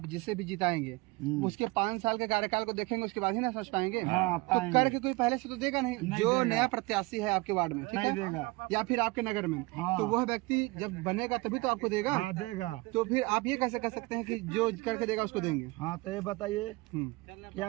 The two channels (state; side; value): quieter; left; 24.1 dB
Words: जिसे भी जिताएंगे उसके 5 साल के कार्यकाल को देखेंगे, उसके बाद ही ना समझ पाएंगे। हाँ, तो करके कोई पहले से तो देगा नहीं जो देगा। नया प्रत्याशी है आपके वार्ड में, ठीक नहीं है? देगा या फिर आपके नगर में। हाँ। तो वह व्यक्ति जब बनेगा तभी तो आपको देगा। हाँ देगा। तो फिर आप ये कैसे कर सकते हैं कि जो करके देगा उसको देंगे? हाँ तो ये बताइए